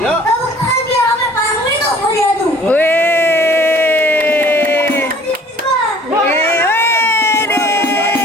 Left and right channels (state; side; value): normal; both; correlation 0.52